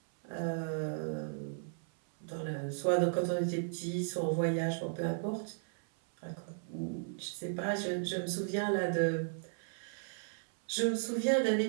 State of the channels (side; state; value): left; silent; 54 dB below the other